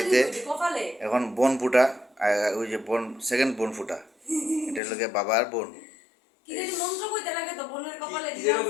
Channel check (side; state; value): right; drops out; at 4.8 s